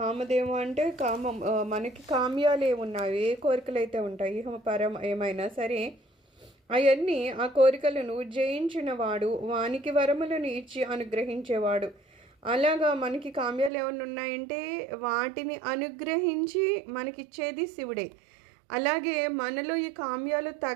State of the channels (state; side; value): drops out; left; at 13.7 s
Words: అంటే మనకి కామ్యాలు ఏమున్నాయి, ఏ కోరికలు అయితే ఉంటాయి, పరం ఏమైనా సరే అవన్నీ ఆ కోరికలను జయించిన వాడు, వానికి వరములను ఇచ్చి అనుగ్రహించేవాడు. అలాగా మనకి కామ్యాలు ఏమైనా ఉన్నాయంటే వాటిని అనుగ్రహించి మనకిచ్చేది శివుడే. అలాగే మనలో ఈ కామ్యాలు